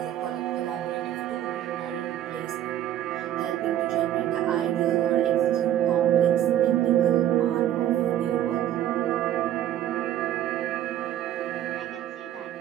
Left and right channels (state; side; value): quieter; left; 11.8 dB